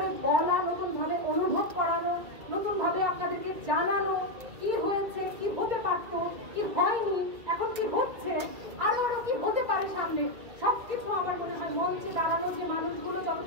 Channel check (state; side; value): late; left; 2.7 ms